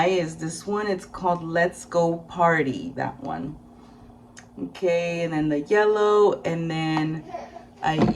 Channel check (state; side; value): identical; both; correlation 1.00